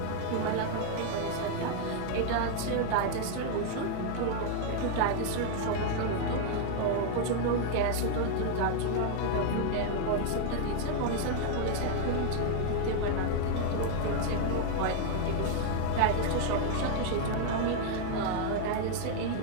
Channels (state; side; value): different; both; correlation 0.00